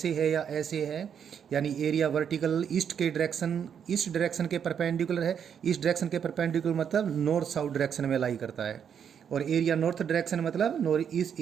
है या ऐसे है, यानी एरिया वर्टिकल ईस्ट डायरेक्शन के परपेंडिकुलर है। ईस्ट डायरेक्शन के परपेंडिकुलर मतलब नॉर्थ साउथ डायरेक्शन में लाई करता है। और एरिया नॉर्थ डायरेक्शन मतलब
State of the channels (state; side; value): quieter; left; 8.0 dB